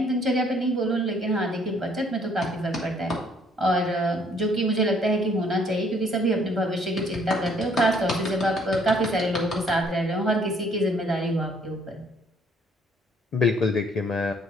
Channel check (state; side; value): normal; both; correlation 0.63